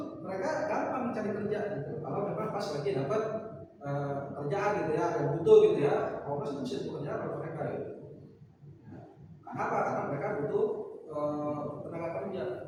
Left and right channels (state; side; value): identical; both; correlation 1.00